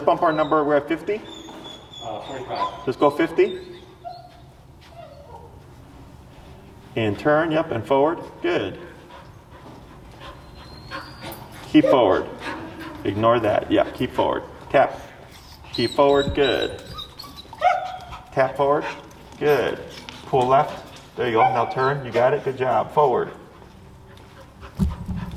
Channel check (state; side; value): identical; both; correlation 1.00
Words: bump our number. We're at 50. 45. Let's go 50. And turn, yep, and forward. Good. Keep forward. Ignore that. Yeah, keep forward. Tap. Keep forward. Good. Tap forward. Good. Pull left. There you go. Now turn. You got it. Good job. Forward.